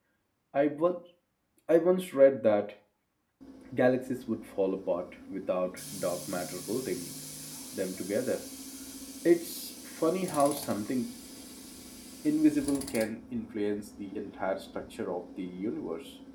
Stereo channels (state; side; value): identical; both; correlation 1.00